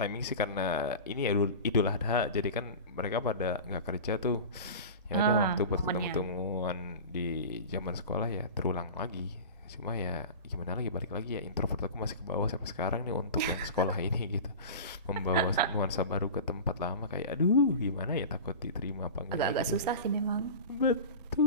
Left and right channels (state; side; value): inverted; both; correlation -0.32